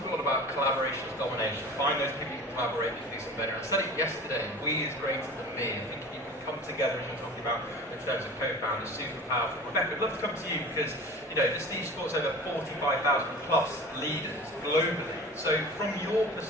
a lot about collaboration as domination. Find those people you can collaborate with to do something better. I said it yesterday, we is greater than me. I think you can come together, as you're talking about in terms of co-founders, super powerful. Rebecca, I'd love to come to you because, you know, the Steve supports over 45,000 plus leaders globally. So from your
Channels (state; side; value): normal; both; correlation 0.38